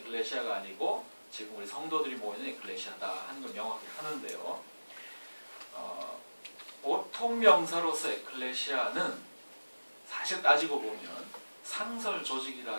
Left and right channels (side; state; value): both; inverted; correlation -1.00